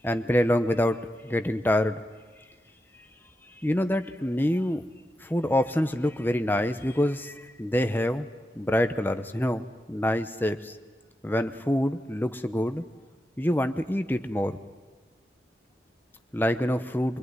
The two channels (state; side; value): normal; both; correlation 0.88